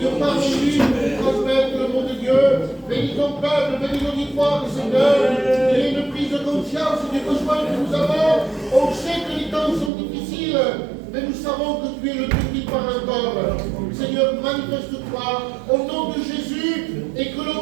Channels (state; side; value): drops out; left; at 9.9 s